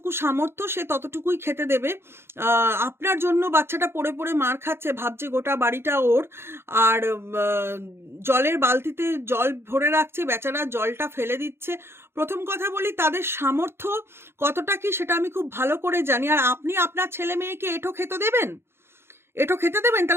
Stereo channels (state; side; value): late; left; 0.12 ms